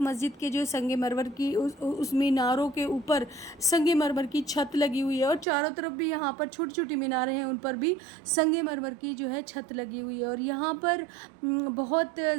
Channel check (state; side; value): drops out; left; at 5.5 s